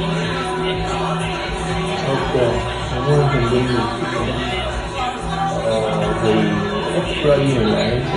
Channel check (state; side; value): identical; both; correlation 1.00